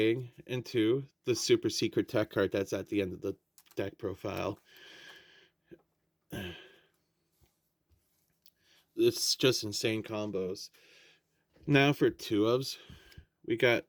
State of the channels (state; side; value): identical; both; correlation 1.00